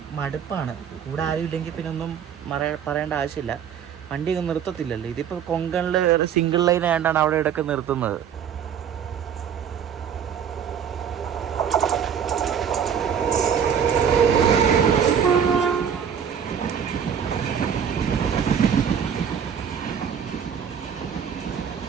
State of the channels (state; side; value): quieter; left; 8.0 dB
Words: മടുപ്പാണ്. കൂടെ ആരും ഇല്ലെങ്കിൽ പിന്നെ ഒന്നും പറയേണ്ട ആവശ്യമില്ല. വണ്ടി ഒന്നും നിർത്തത്തില്ലല്ലോ. ഇതിപ്പോൾ കൊങ്കണിൽ സിംഗിൾ ലൈൻ ആയതുകൊണ്ടാണ് അവിടെ ഇടയ്ക്ക് നിർത്തുന്നത്.